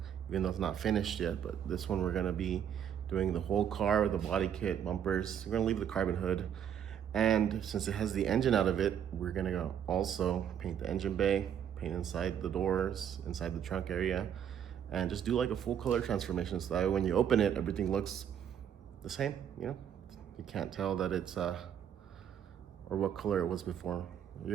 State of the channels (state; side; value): quieter; left; 9.0 dB